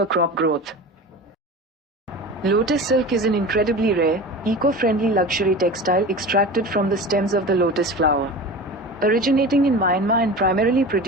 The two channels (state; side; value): normal; both; correlation 0.32